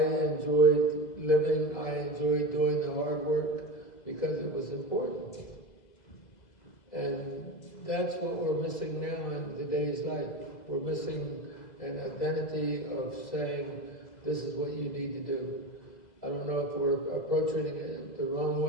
enjoyed living, I enjoyed doing the hard work because it was important. And that's what we're missing now in today's life. We're missing an identity of saying, this is what you need to do. I don't know if we're approaching it the wrong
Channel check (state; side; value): late; right; 2.0 ms